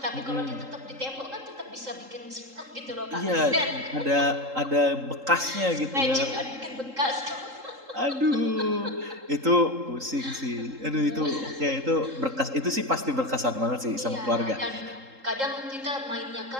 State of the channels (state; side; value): late; left; 3.8 ms